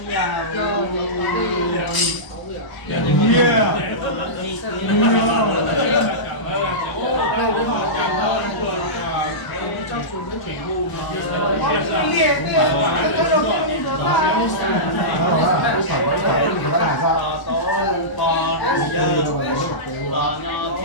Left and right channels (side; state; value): right; late; 1.0 ms